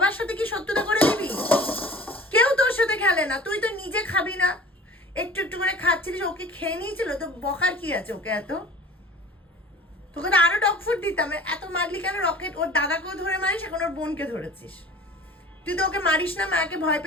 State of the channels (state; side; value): normal; both; correlation 0.44